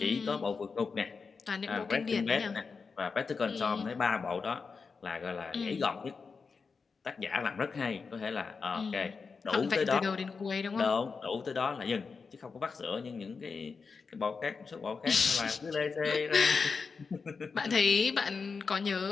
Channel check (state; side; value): quieter; right; 5.0 dB